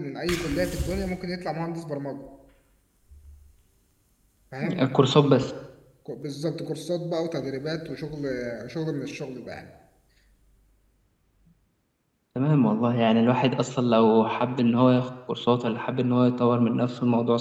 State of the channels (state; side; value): identical; both; correlation 1.00